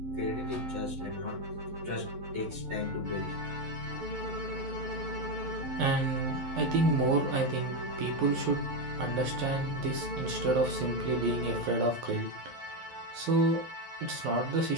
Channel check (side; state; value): left; late; 11 ms